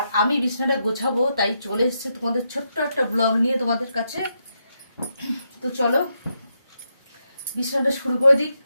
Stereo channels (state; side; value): inverted; both; correlation -0.82